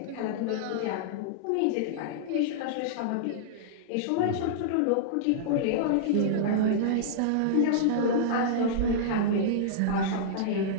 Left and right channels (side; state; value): both; different; correlation -0.02